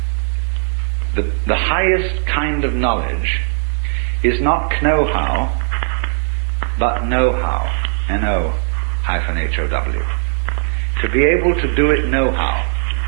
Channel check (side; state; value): left; silent; digital silence